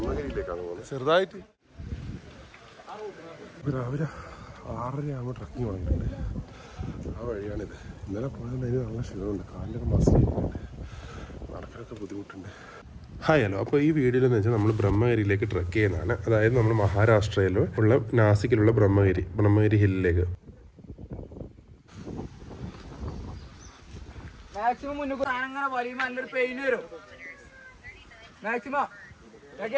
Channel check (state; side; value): identical; both; correlation 1.00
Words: പോകുന്നത്. ചെറുതായിട്ട് രാവിലെ 6:30 ആകുമ്പോൾ ട്രക്കിങ് തുടങ്ങിയിട്ടുണ്ട്. ആ വഴിയാണിത്. ഇന്നലെ പോയതുകൊണ്ട് അതിന് നല്ല ക്ഷീണമുണ്ട്. കാലിലൊക്കെ മസിൽ ചെയ്യുന്നുണ്ട്, നടക്കാനൊക്കെ ബുദ്ധിമുട്ടുണ്ട്. Hi hello. അപ്പോൾ ഈ വീഡിയോയിലെന്ന് വെച്ചാൽ നമ്മൾ ബ്രഹ്മഗിരിയിലേക്ക് ട്രക്ക് ചെയ്യുന്നതാണ്. അതായത് നമ്മൾ മഹാരാഷ്ട്രയിൽ ഉള്ള നാസിക്കിലുള്ള ബ്രഹ്മഗിരി ഹില്ലിലേക്ക്. മാക്സിമം മുന്നോട്ട് അങ്ങനെ വലിയുമ്പോൾ നല്ലൊരു പെയിൻ വരും. മാക്സിമം